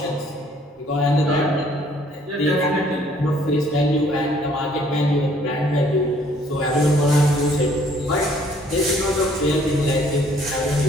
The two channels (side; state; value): both; normal; correlation 0.61